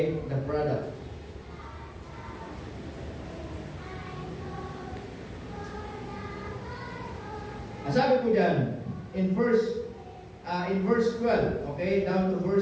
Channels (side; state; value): both; identical; correlation 1.00